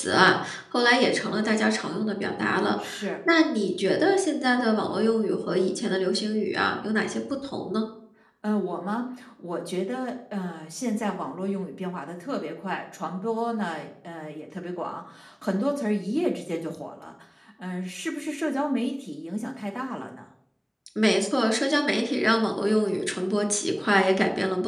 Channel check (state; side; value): identical; both; correlation 1.00